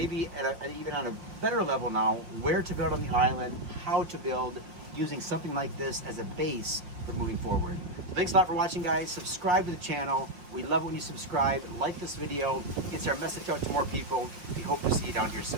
even on a better level now, where to build on the island, how to build, using something like this as a base for moving forward. So thanks a lot for watching, guys. Subscribe to the channel. We love it when you subscribe. Like this video. Gets our message out to more people. We hope to see you down here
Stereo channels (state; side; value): late; left; 5.6 ms